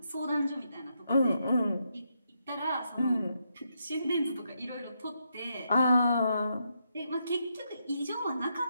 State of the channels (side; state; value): both; inverted; correlation -0.80